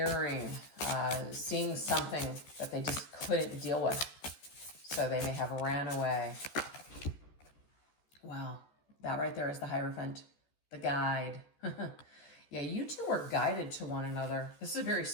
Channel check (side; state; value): right; late; 14 ms